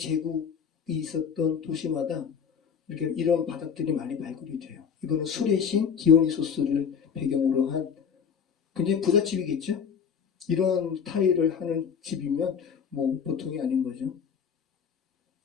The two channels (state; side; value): quieter; right; 7.0 dB